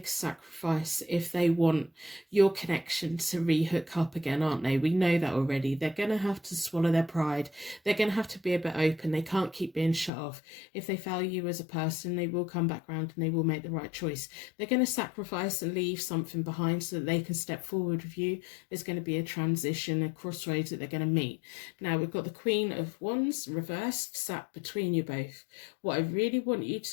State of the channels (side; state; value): right; drops out; at 10.1 s